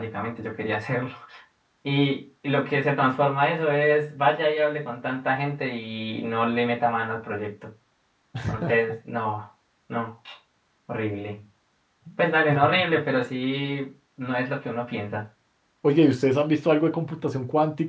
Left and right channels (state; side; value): identical; both; correlation 1.00